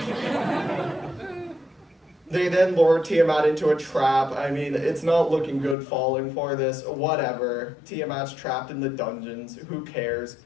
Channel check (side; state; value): right; drops out; at 5.8 s